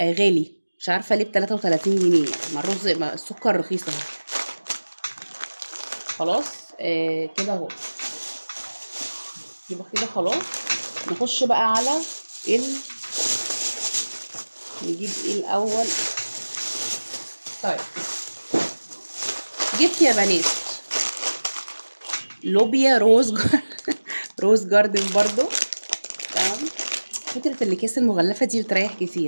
غالي، مش عارفه ليه ب33 جنيه. ما الرز، ما السكر رخيص اهو. خلاص كده اهو، يبقى كده خلاص. نخش بقى على نجيب ايه الاول. طيب، جبت يا بنات لوبيا روز جاردن برضو. تمام. فكره الاكياس المغلفه دي بتريح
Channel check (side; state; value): both; inverted; correlation -1.00